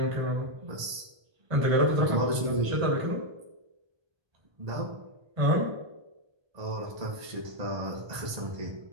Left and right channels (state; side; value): late; left; 1.2 ms